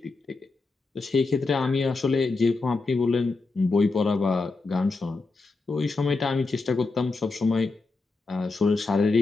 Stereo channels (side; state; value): right; quieter; 3.7 dB